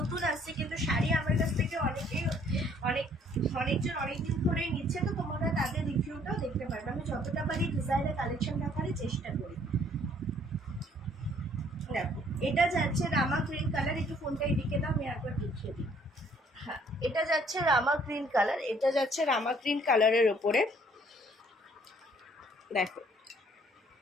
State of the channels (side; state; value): both; normal; correlation 0.61